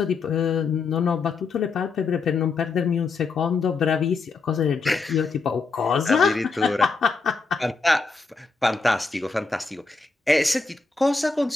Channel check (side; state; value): right; quieter; 4.2 dB